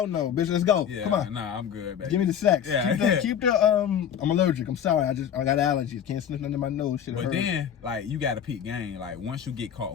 no, bitch. Let's go. Yeah, Come on. nah, I'm good, baby. Give me the sex. Yeah. Keep the I'm allergic. I'm sorry. I got allergies. Can't sniff nothing in my nose. Shit. But then, like, you got to peep game. Like, once you get caught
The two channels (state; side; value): quieter; right; 8.8 dB